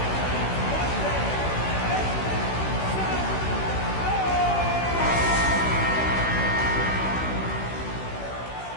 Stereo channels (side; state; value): right; late; 16 ms